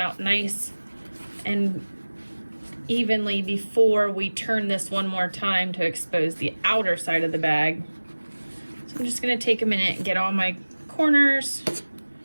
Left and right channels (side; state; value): both; inverted; correlation -1.00